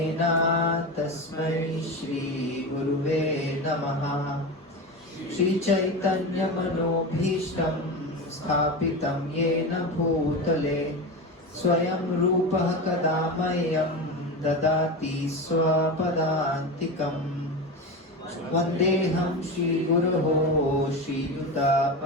तस्मै श्रीगुरुवे नमः। श्रीचैतन्यमनोभीष्टं स्थापितं येन भूतले स्वयं रूपः कदा मह्यं ददाति स्वपदान्तिकम्। वन्देऽहं श्रीगुरोः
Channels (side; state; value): both; normal; correlation 0.23